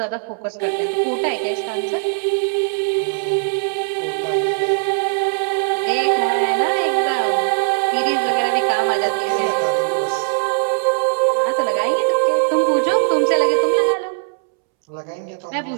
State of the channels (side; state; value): left; silent; 66 dB below the other